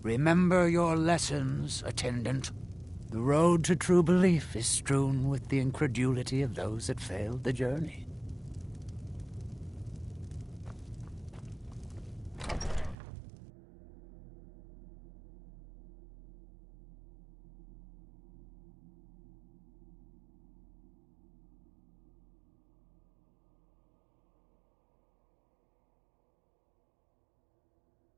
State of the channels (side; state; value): left; drops out; at 13.0 s